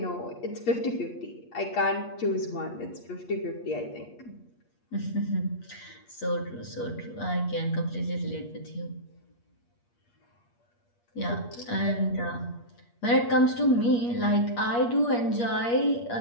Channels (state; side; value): late; right; 8.4 ms